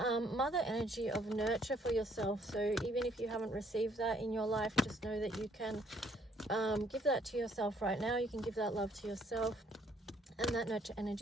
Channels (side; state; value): both; normal; correlation 0.65